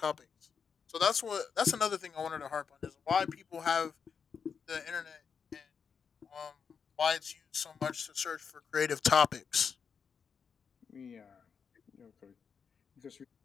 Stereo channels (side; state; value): right; quieter; 6.4 dB